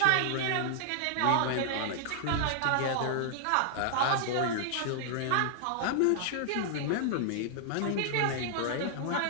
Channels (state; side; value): different; both; correlation -0.01